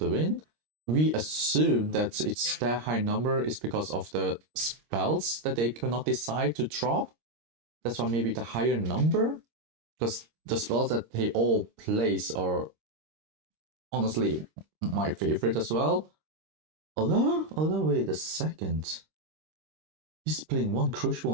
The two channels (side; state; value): left; late; 26 ms